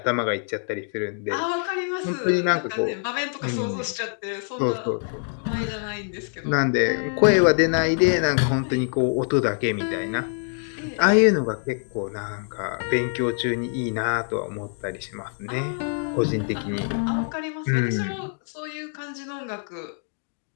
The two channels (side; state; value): right; silent; 59 dB below the other